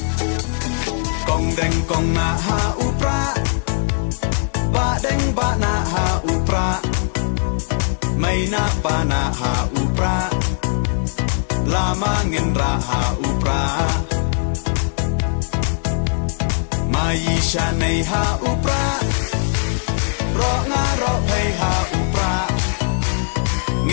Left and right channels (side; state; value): right; silent; digital silence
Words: kong deng kong na ha upra ba deng ba na ha upra mai na pa na ha upra lama ngin ra ha upra mai sha nei ha upra ro nga ro phei ha upra